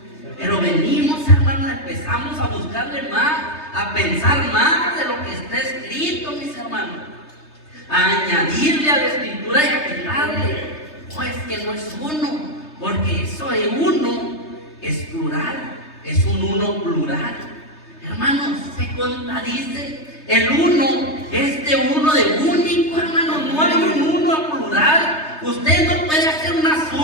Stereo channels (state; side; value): late; right; 3.3 ms